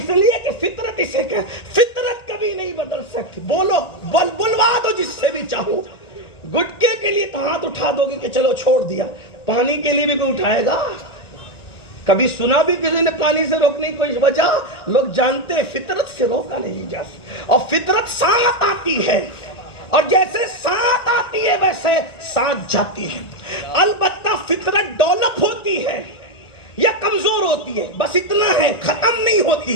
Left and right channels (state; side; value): late; right; 1.9 ms